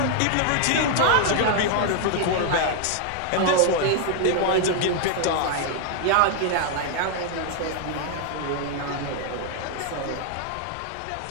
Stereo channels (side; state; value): both; different; correlation 0.00